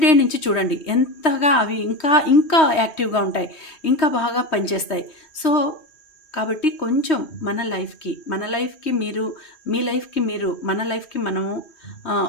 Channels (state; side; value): late; right; 3.2 ms